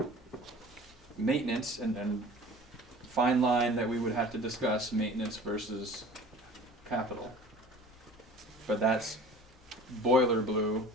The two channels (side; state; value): both; normal; correlation 0.43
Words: Maintenance, and fine line that we would have to discuss, maintenance versus capital. But that's boiler blue